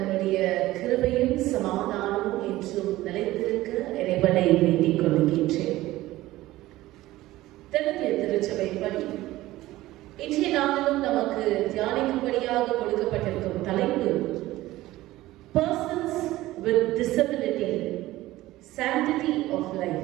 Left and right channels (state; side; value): quieter; left; 16.8 dB